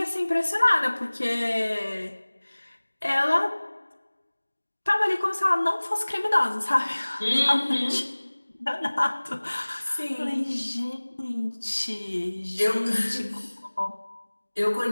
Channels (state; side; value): inverted; both; correlation -1.00